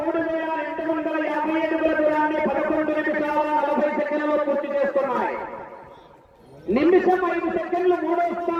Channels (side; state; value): both; identical; correlation 1.00